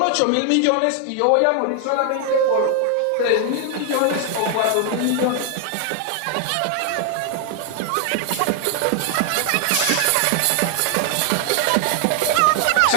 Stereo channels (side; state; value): both; different; correlation 0.00